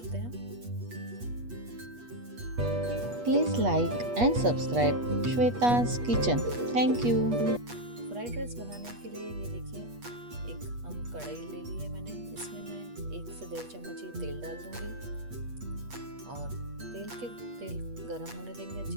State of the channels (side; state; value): left; late; 8.3 ms